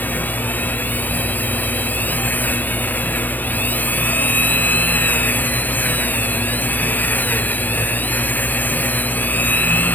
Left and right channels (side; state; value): right; late; 0.089 ms